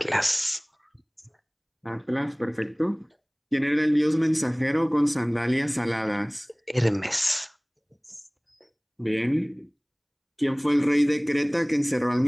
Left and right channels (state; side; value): identical; both; correlation 1.00